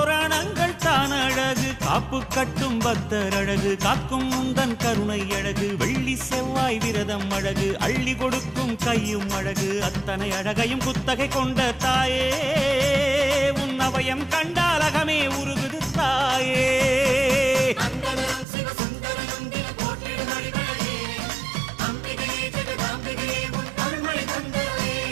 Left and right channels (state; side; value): drops out; left; at 18.4 s